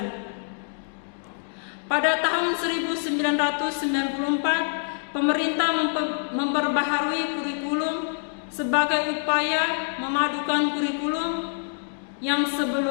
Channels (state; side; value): silent; right; digital silence